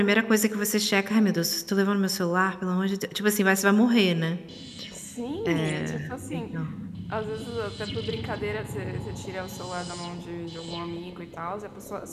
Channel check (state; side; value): identical; both; correlation 1.00